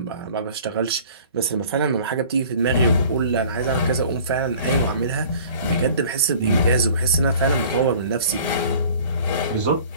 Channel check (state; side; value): inverted; both; correlation -0.48